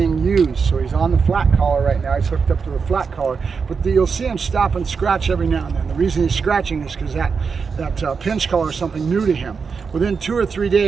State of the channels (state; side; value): quieter; left; 5.5 dB